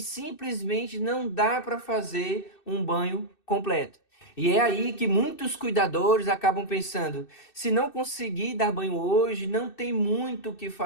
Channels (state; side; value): late; right; 2.6 ms